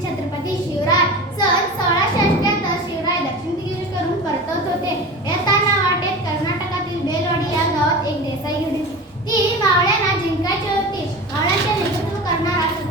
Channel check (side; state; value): both; normal; correlation 0.32